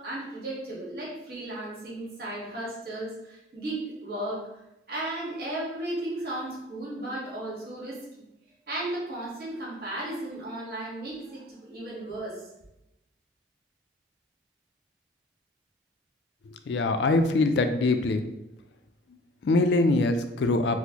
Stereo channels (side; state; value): both; normal; correlation 0.46